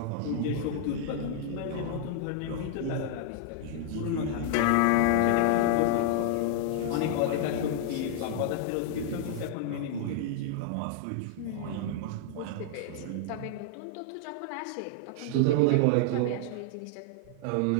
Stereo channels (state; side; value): different; both; correlation -0.01